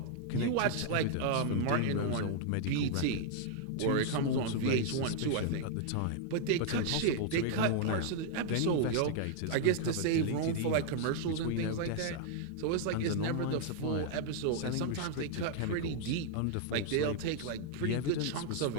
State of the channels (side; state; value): both; different; correlation -0.01